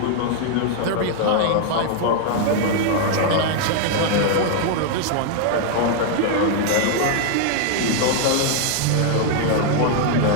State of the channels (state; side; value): different; both; correlation 0.00